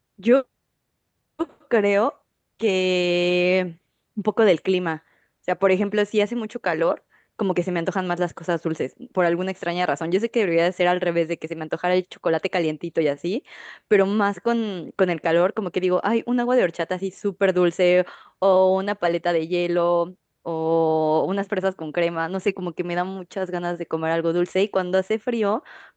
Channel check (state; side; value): identical; both; correlation 1.00